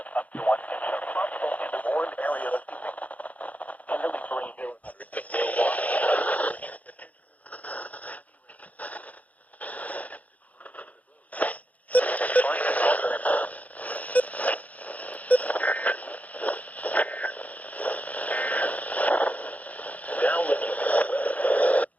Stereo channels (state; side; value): late; right; 0.073 ms